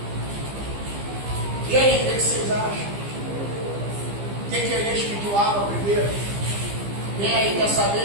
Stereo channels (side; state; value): left; late; 15 ms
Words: E aí, o que vocês acham? Por que Elias pediu água primeiro? Quem aí quer